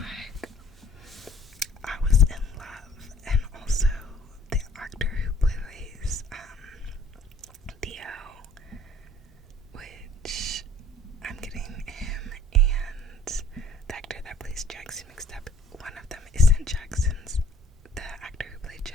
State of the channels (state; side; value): normal; both; correlation 0.57